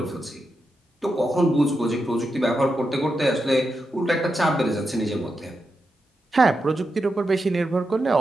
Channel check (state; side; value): normal; both; correlation 0.87